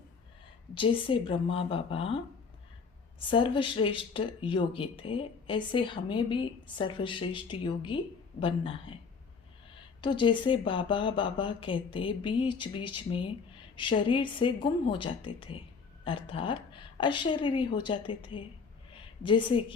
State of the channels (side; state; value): right; quieter; 5.3 dB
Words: जैसे ब्रह्मा बाबा सर्वश्रेष्ठ योगी थे, ऐसे हमें भी सर्वश्रेष्ठ योगी बनना है। तो जैसे बाबा बाबा कहते बीच बीच में शरीर से गुम हो जाते थे, अर्थात अशरीरी हो जाते थे। जैसे